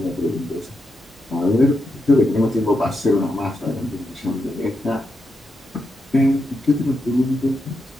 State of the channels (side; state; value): both; normal; correlation 0.84